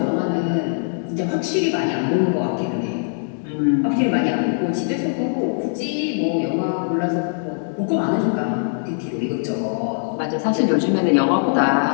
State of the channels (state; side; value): silent; right; digital silence